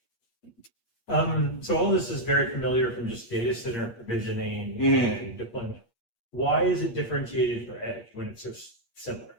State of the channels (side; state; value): right; late; 8.5 ms